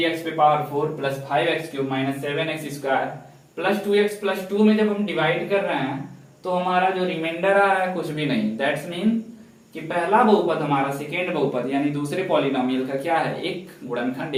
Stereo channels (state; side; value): identical; both; correlation 1.00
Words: पे power 4 plus 5x cube minus 7x square plus 2x plus 2 में जब हम डिवाइड कर रहे हैं तो हमारा जो रिमाइंडर आ रहा है कुछ भी नहीं। दैट्स मीन कि पहला बहुपद हमारा सेकेंड बहुपद यानी दूसरे पॉलिनोमियल का क्या है, एक गुणनखंड